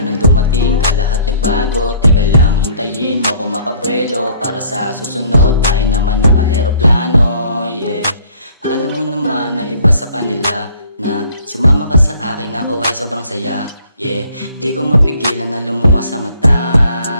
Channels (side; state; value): both; inverted; correlation -0.57